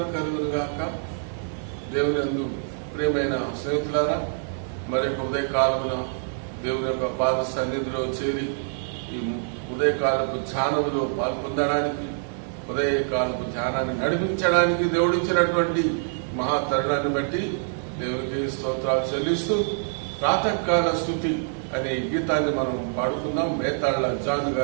కలుగునుగాక. దేవుని యందు ప్రియమైన స్నేహితులారా, మరొక ఉదయకాలమున దేవుని యొక్క పాద సన్నిధిలో చేరి ఈ ఉదయకాలపు ధ్యానంలో పాల్పొందడానికి, ఉదయకాలపు ధ్యానాన్ని నడిపించడానికి దేవుడిచ్చినటువంటి మహా తరుణాన్ని బట్టి దేవునికి స్తోత్రాలు చెల్లిస్తూ ప్రాతకాల స్తుతి అనే గీతాన్ని మనం పాడుకుందాం. మేతాళ్ల జాన్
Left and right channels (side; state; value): left; silent; digital silence